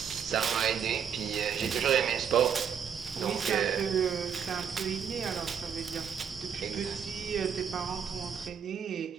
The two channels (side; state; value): left; quieter; 7.6 dB